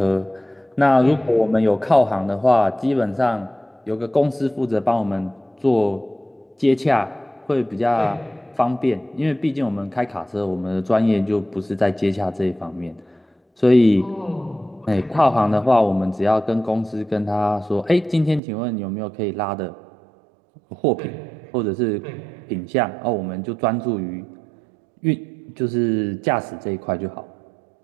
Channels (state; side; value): drops out; left; at 18.4 s